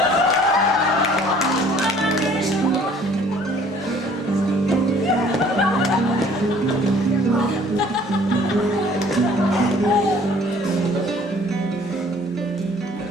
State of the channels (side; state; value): both; normal; correlation 0.55